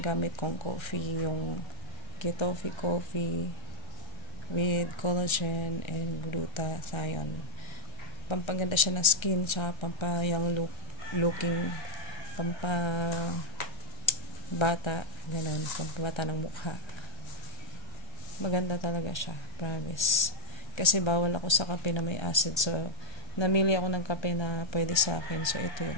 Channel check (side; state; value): right; late; 1.3 ms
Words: kong coffee, yung Gitofi coffee with collagen and glutathione. Pampaganda siya ng skin, tsaka pampayang looking, pampabata, ganun, pampabata ng mukha. Maganda talaga siya, promise. Kasi bawal ako sa kape na may acid, so namili ako ng kape na pwede sa akin, so ito